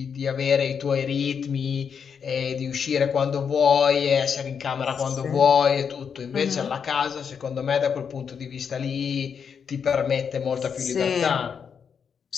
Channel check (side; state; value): right; quieter; 6.8 dB